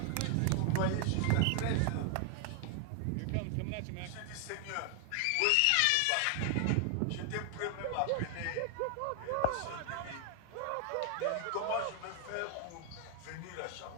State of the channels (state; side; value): different; both; correlation 0.00